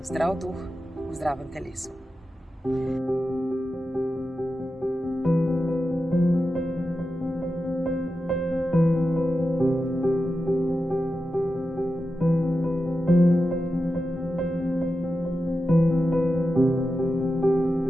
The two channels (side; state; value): both; normal; correlation 0.90